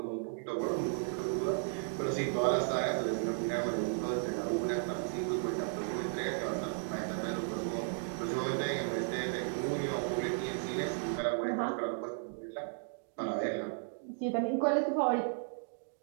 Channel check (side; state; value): left; silent; digital silence